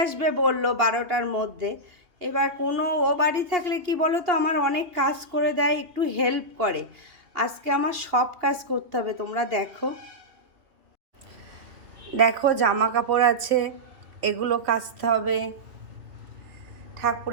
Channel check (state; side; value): late; left; 2.7 ms